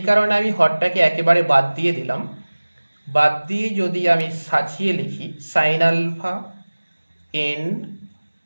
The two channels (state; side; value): inverted; both; correlation -1.00